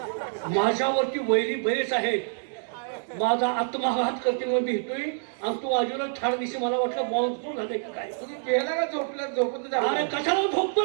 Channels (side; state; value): left; silent; digital silence